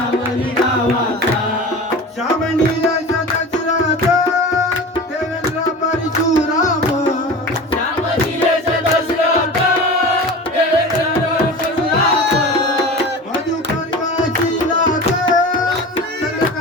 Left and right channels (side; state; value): both; normal; correlation 0.33